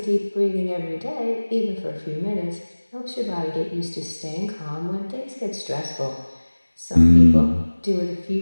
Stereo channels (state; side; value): inverted; both; correlation -1.00